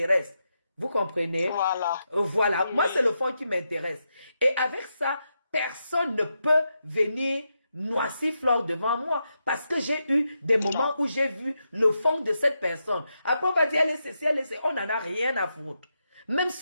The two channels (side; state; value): both; inverted; correlation -0.85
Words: Vous comprenez? Voilà. Voilà. Oui. Moi, c'est le fond qui m'intéresse. Et avec ça, personne ne peut venir noisir Flore devant moi parce que j'ai eu des moments où j'ai vu le fond de cette personne. Après, on va dire, elle est ceci, elle est ceci. On n'en a rien à foutre. Même